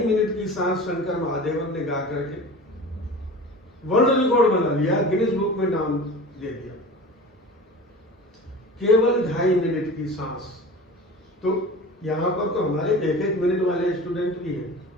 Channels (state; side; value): normal; both; correlation 0.36